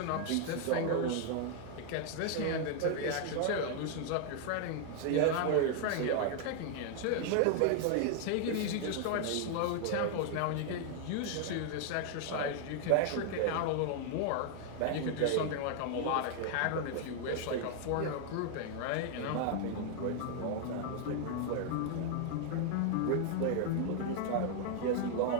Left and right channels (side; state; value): both; different; correlation 0.00